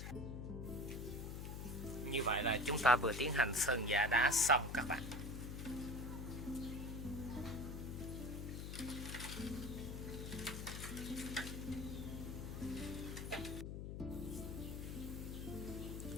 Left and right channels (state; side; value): noise; left; hum, 6 dB below the sound